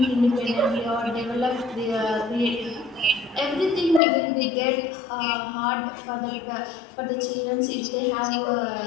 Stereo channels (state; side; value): drops out; right; at 4.0 s